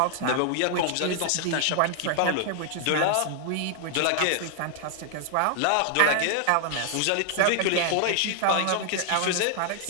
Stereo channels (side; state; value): both; different; correlation 0.00